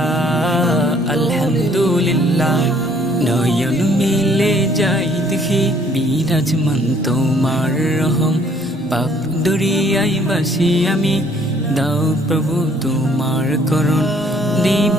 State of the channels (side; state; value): both; normal; correlation 0.61